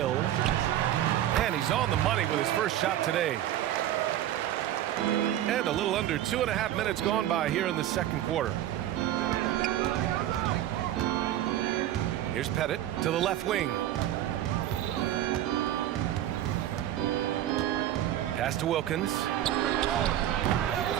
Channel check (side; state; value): left; quieter; 12.4 dB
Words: And he's on the money with his first shot today. And a little under 2.5 minutes gone by here in the second quarter. Here's Pettit to the left wing. Pass to Wilkins.